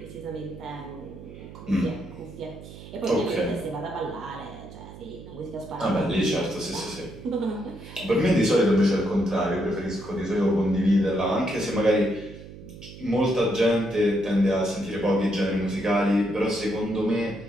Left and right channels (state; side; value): noise; right; hum, 15 dB below the sound